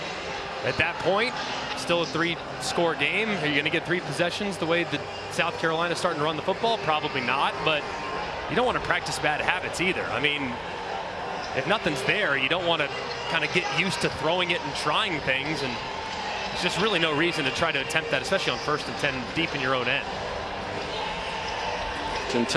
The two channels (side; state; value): both; identical; correlation 1.00